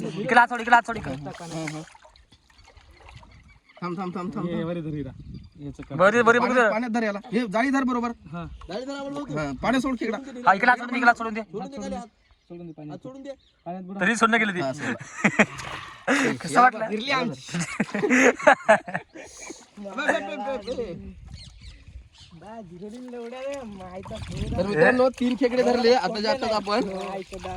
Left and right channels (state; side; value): identical; both; correlation 1.00